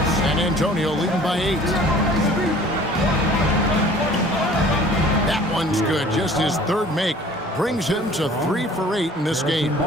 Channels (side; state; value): both; normal; correlation 0.50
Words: Antonio leading by 8. That one's good. Just his 3rd make. Brings him to 3 for 8 in this game.